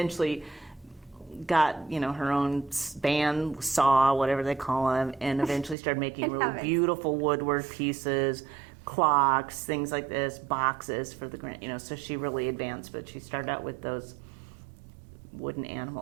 got, you know, her own band saw, whatever they call them, and eventually started making really beautiful woodwork pieces, clocks, things like this, boxes for the grand, you know, so she really advanced, but she started out with those wooden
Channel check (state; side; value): drops out; left; at 5.8 s